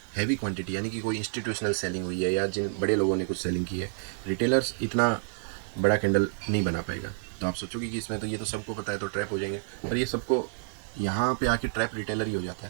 हैवी क्वांटिटी यानी कि कोई इंस्टीट्यूशनल सेलिंग हुई है या जिन बड़े लोगों ने कुछ सेलिंग की है, रिटेलर्स इतना बड़ा कैंडल नहीं बना पाएगा। तो आप सोचोगे कि इसमें तो ये तो सबको पता है तो ट्रैप हो जाएंगे, पर ये सबको यहाँ पे आके ट्रैप रिटेलर ही हो जाता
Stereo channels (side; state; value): left; silent; digital silence